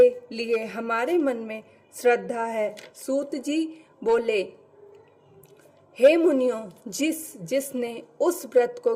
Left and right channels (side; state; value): both; identical; correlation 1.00